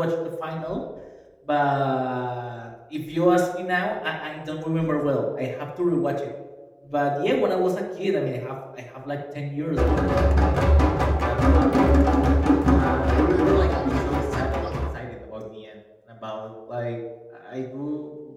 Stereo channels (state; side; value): identical; both; correlation 1.00